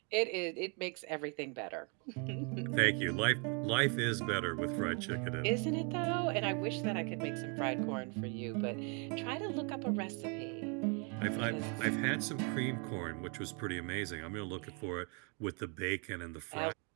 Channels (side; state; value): left; quieter; 35.4 dB